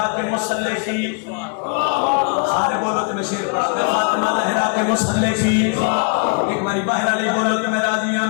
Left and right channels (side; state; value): right; quieter; 37.4 dB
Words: के मुसल्ले की सारे बोलो तो मैं शेर पढ़ता मैं फातिमा ज़हरा के मुसल्ले की एक बारी बाहर अली बोलो तो मैं राजी हूं